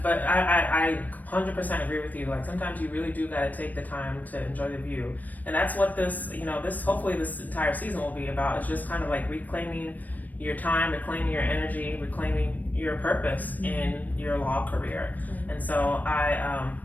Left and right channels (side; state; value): right; late; 0.081 ms